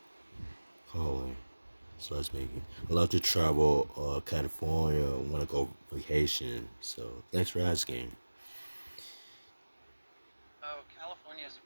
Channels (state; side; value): inverted; both; correlation -1.00